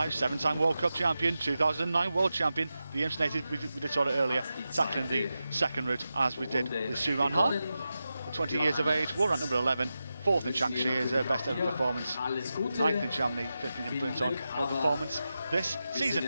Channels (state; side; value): inverted; both; correlation -0.91